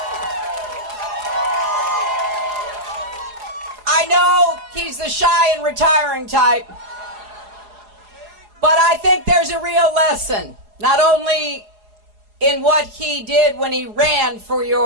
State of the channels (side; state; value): left; late; 4.8 ms